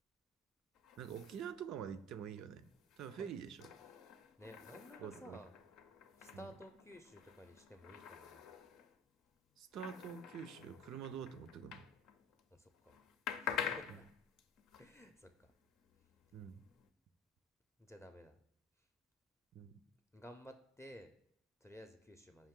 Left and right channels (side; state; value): both; normal; correlation 0.39